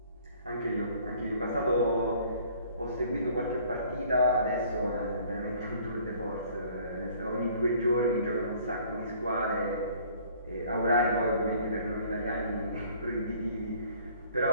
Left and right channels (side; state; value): both; inverted; correlation -0.55